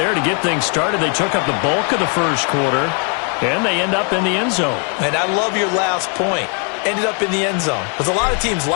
to get things started. They took up the bulk of the first quarter, and they end up in the end zone. And I love your last point. Ended up in the end zone. Because a lot of teams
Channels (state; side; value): quieter; right; 39.8 dB